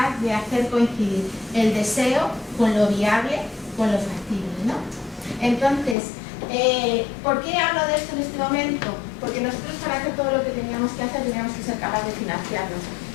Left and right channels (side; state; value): right; drops out; at 6.0 s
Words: de hacer coincidir el deseo con lo viable, con lo factible, ¿no? Entonces, ¿por qué hablo de esto en este momento? Porque nosotros, para hacer todo lo que teníamos que hacer, teníamos que ser capaces de financiarnos,